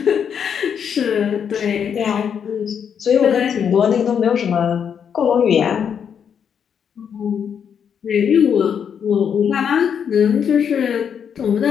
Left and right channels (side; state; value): right; quieter; 7.7 dB